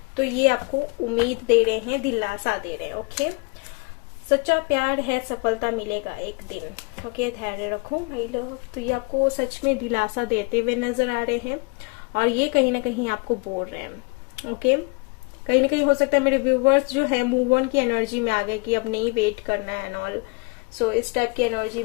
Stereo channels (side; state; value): right; quieter; 29.9 dB